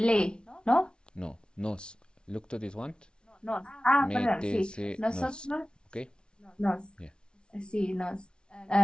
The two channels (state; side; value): late; right; 0.056 ms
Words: ¿no? No, nos. Look to this one. Nos. Perdón, sí. Métese Nosotros, Okay? nos. Yeah. Sí, nos.